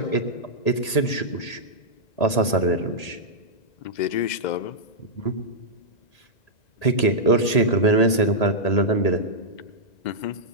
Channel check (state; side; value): late; right; 1.8 ms